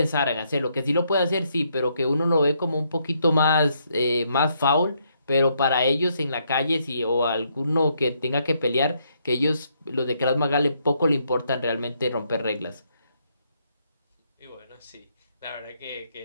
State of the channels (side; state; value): both; inverted; correlation -0.74